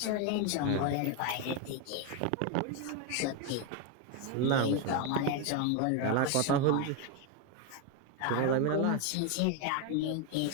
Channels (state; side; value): different; both; correlation 0.01